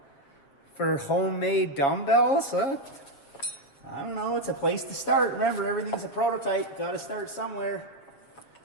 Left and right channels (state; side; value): late; right; 7.3 ms